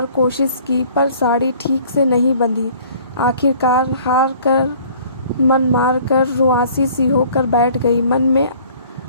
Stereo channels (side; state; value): both; inverted; correlation -0.53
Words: कोशिश की पर साड़ी ठीक से नहीं बंधी। आखिरकार हार कर मन मार कर रुआसी सी होकर बैठ गई। मन में